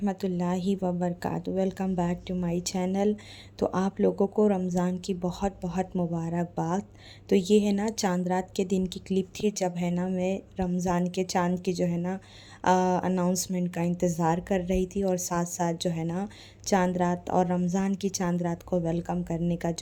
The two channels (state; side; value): identical; both; correlation 1.00